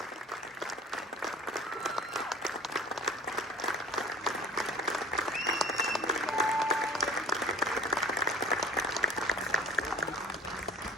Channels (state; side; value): normal; both; correlation 0.43